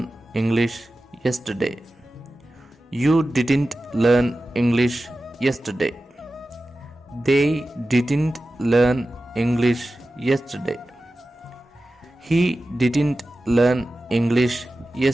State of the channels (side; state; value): both; normal; correlation 0.94